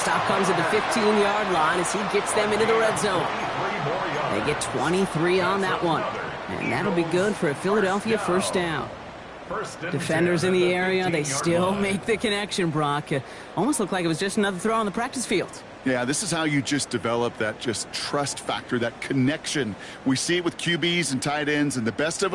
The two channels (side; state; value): both; identical; correlation 1.00